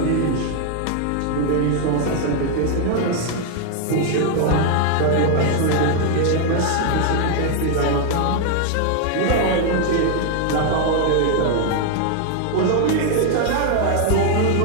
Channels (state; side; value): different; both; correlation 0.00